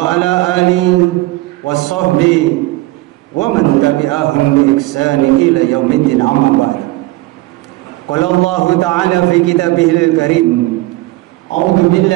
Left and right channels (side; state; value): left; quieter; 19.1 dB